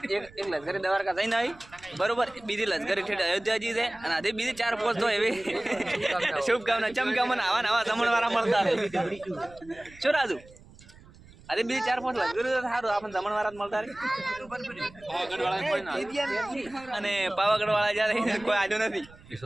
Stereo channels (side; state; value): right; noise; rumble, 23 dB below the sound